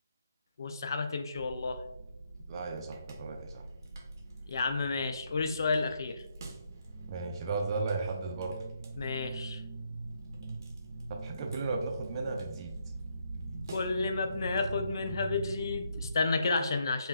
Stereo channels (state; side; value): inverted; both; correlation -0.76